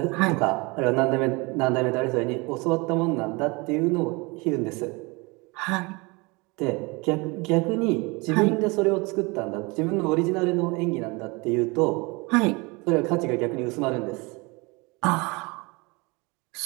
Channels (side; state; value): left; quieter; 26.8 dB